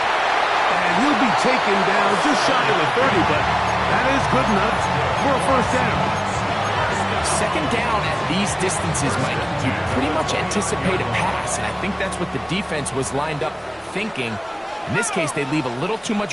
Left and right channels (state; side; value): identical; both; correlation 1.00